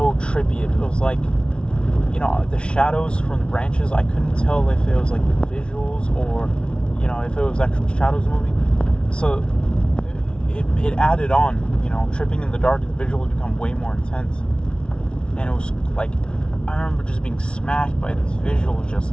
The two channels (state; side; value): late; right; 0.057 ms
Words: trippy. It was like, you know, the shadows from the branches, I couldn't tell if it was like the visuals or, you know, if it was actual shadows moving. So it added on, you know, tripping in the dark, the visuals become way more intense. And it was like, I remember just being smacked by these visuals,